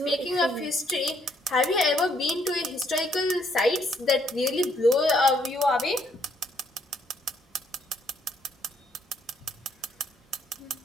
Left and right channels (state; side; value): normal; both; correlation 0.69